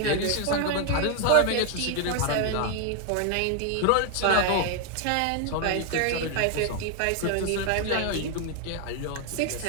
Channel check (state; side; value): different; both; correlation 0.00